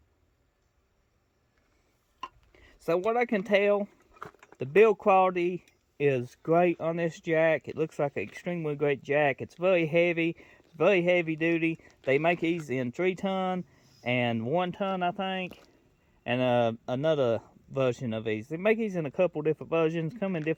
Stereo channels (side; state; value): both; identical; correlation 1.00